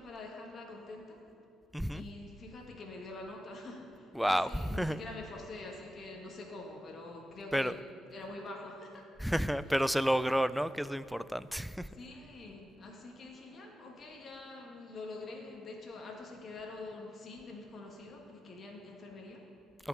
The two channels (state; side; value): normal; both; correlation 0.94